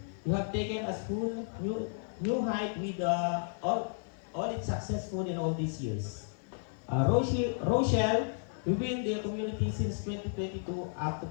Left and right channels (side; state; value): right; silent; digital silence